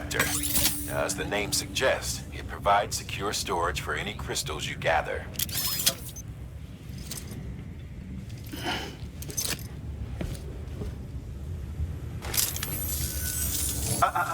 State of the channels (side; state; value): both; identical; correlation 1.00